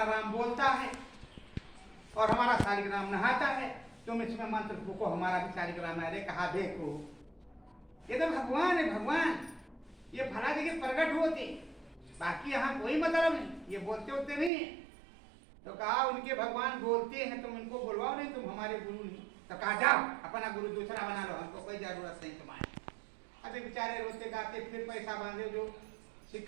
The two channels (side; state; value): left; drops out; at 14.5 s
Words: राम बोलता है और हमारा शालिग्राम नहाता है, तुम इसमें मंत्र फूको हमारा भी शालिग्राम है। कहा देखो ये तो भगवान है, भगवान ये फला जगह प्रकट होते, बाकी यहाँ कोई मतलब नहीं, ये बोलते होते नहीं है। तो कहा उनके भगवान बोलते हैं, तुम इनको बुलवाओ, नहीं तुम हमारे गुरु नहीं। तो कहा जाओ अपना गुरु दूसरा बना लो, हमको कोई जरूरत नहीं तुम्हारी। अभी बेचारे रोते गाते फिर पैसा बांधे, जो